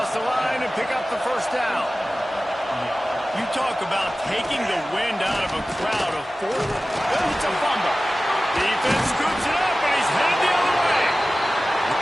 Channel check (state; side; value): normal; both; correlation 0.96